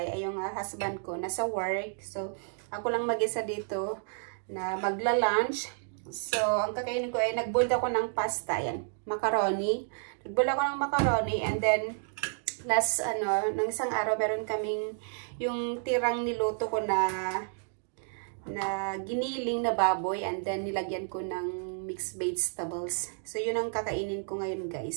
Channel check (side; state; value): left; silent; digital silence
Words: Ay yung husband ko nasa work. So, ako lang mag-isa dito na magla-lunch. So, ang kakainin ko ay nag-boil ako ng pasta. Yan, macaroni. Nag-boil ako ng macaroni and then last nung isang araw meron kaming yung tirang niluto ko na giniling na baboy and then nilagyan ko ng mixed vegetables. So yun ang kakainin ko ngayon